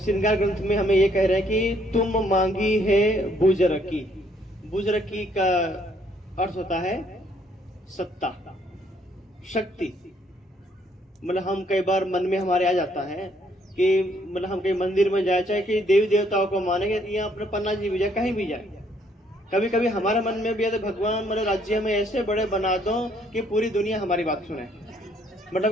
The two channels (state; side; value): normal; both; correlation 0.67